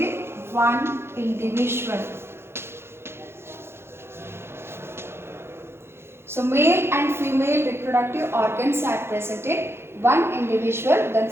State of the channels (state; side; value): late; left; 0.12 ms